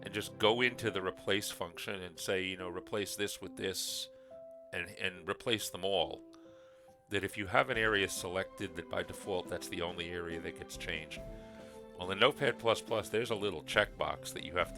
and just go into the replace function and say, replace this with this, and replace them all, that if you have an area selected, that by default that's the only area that gets changed. Well, in Notepad++, there's a little checkbox that you have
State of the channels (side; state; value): both; identical; correlation 1.00